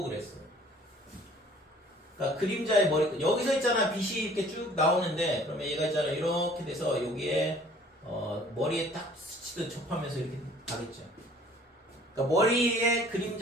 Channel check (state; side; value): normal; both; correlation 0.53